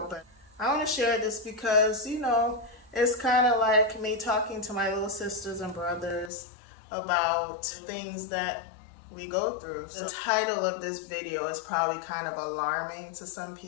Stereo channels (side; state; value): right; drops out; at 6.3 s